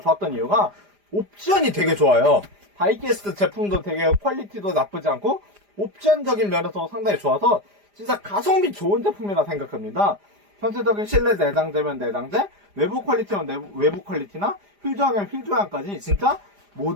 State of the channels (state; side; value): late; left; 4.9 ms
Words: 이유가 옵션이 되게 좋아요. 다이캐스트 제품도 되게 퀄리티도 나쁘지 않고 옵션적인 면에서 상당히 좋아서 진짜 가성비 좋은 제품이라 생각합니다. 전체적인 실내 내장재면 내장재, 외부 퀄리티면 외부 퀄리티나 휠 조향이면 휠 조향까지 진짜